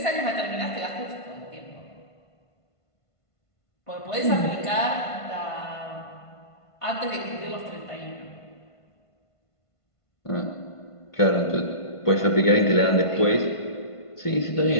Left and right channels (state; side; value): late; right; 1.5 ms